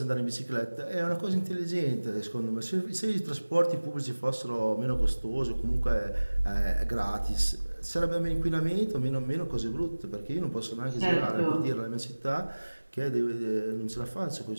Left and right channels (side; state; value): both; inverted; correlation -1.00